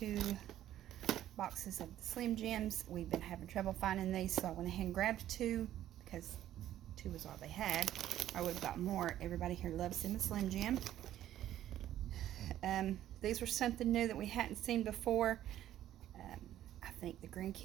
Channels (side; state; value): left; quieter; 12.4 dB